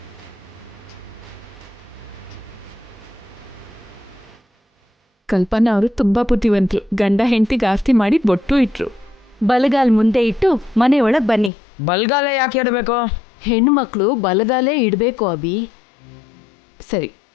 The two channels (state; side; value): drops out; right; at 11.5 s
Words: ಕಲ್ಪನಾ ಅವರು ತುಂಬಾ ಬುದ್ಧಿವಂತರು. ಗಂಡ ಹೆಂಡತಿಗೆ ಆಸ್ತಿ ಮಾಡಿ ಬೊಟ್ಟು ಇಟ್ರು. ಬಲಗಾಲ್ ಮುಂದೆ ಇಟ್ಟು ಮನೆಯೊಳಗ್ ಬನ್ನಿ. ಬಲ್ಗಾಲ ಯಾಕೆ ಇಡಬೇಕು? ಹೆಣ್ಣು ಮಕ್ಕಳು ಬಲಗಾಲೇ ಇಡಬೇಕು ಅಭಿ. ಸರಿ,